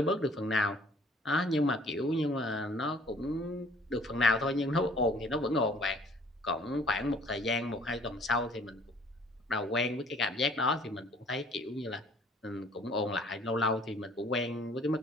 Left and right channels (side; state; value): both; normal; correlation 0.56